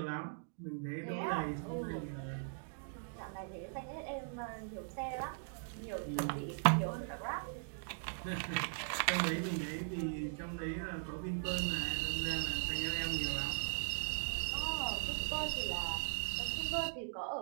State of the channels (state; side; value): silent; left; digital silence